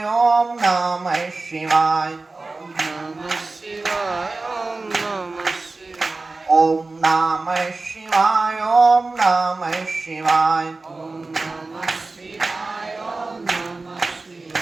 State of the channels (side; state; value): left; quieter; 3.5 dB